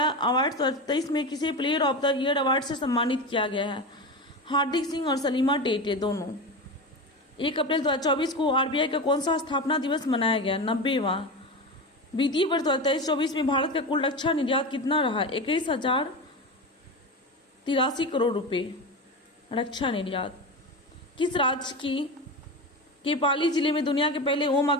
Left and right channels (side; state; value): both; normal; correlation 0.23